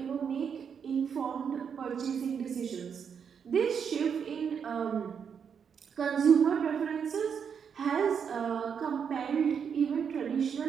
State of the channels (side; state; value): left; quieter; 7.1 dB